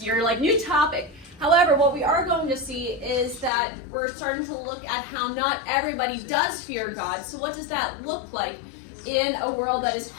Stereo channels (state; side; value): drops out; right; at 3.5 s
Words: You're like, new topic. However, what we are going to see is that we're starting to look at how not everybody does fear God. So what does that look like in a world that is